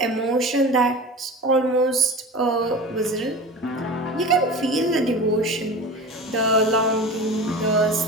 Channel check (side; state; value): both; normal; correlation 0.33